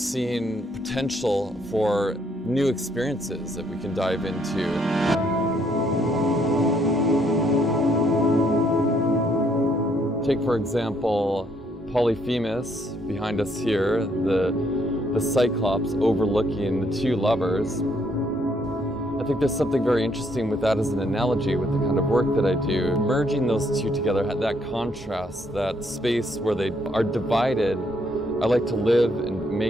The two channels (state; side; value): normal; both; correlation 0.70